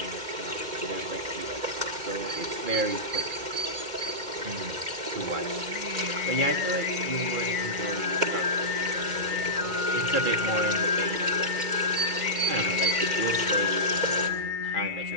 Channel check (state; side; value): late; left; 2.1 ms